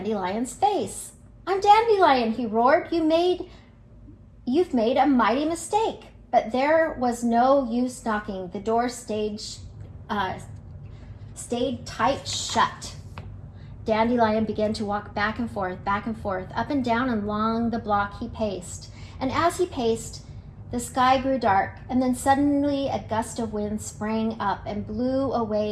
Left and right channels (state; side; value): identical; both; correlation 1.00